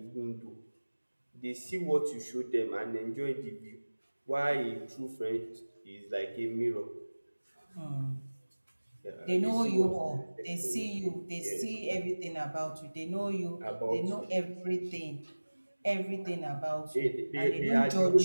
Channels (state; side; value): inverted; both; correlation -1.00